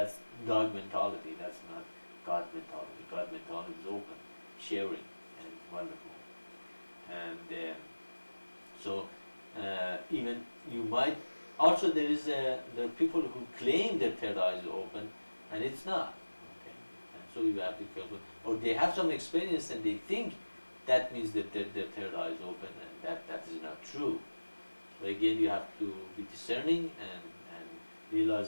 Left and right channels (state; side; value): inverted; both; correlation -1.00